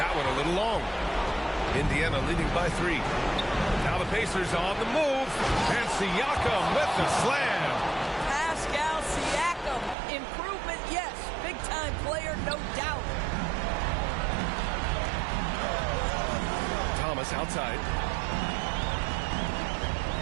one a little long. Indiana leading by 3. Now the Pacers on the move. And Siakam with the slam. Pascal Siakam. Improvement, yes. Big-time player, no doubt. Thomas outside.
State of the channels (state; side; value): drops out; left; at 10.0 s